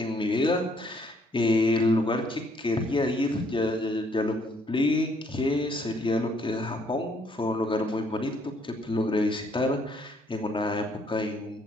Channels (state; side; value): normal; both; correlation 0.67